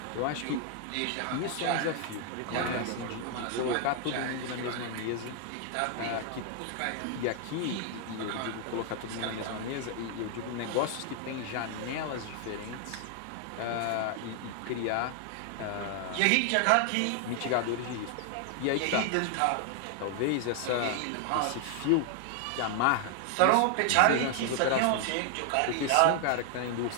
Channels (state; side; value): different; both; correlation 0.00